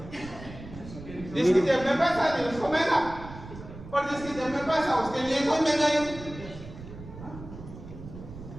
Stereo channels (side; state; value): right; noise; rumble, 14 dB below the sound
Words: जिसकी जेब में पैसा नहीं उसको महंगा, और जिसकी जेब में पैसा उसके लिए कोई महंगाई नहीं।